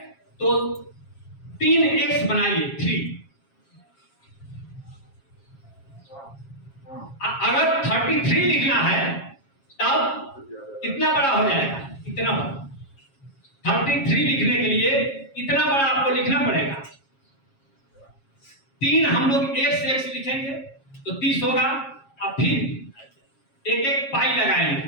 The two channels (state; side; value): late; right; 7.4 ms